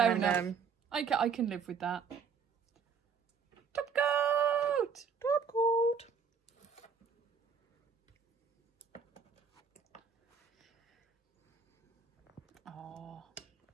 enough. I can live with that. Top coat! Top coat! Oh.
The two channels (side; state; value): left; quieter; 6.1 dB